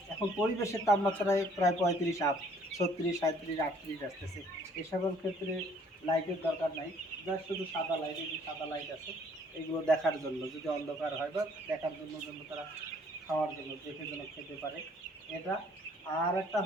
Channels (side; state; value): both; normal; correlation 0.60